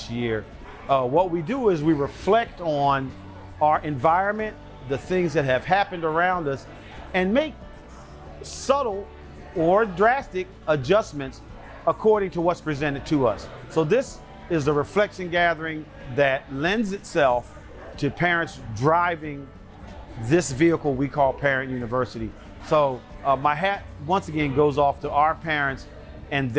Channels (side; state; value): both; identical; correlation 1.00